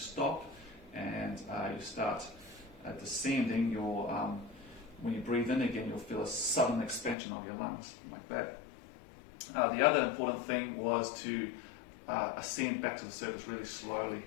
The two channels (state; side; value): drops out; right; at 7.2 s